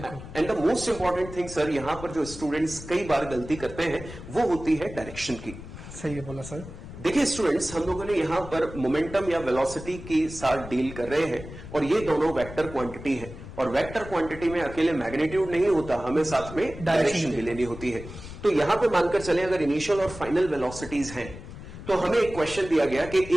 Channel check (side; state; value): left; noise; rumble, 13 dB below the sound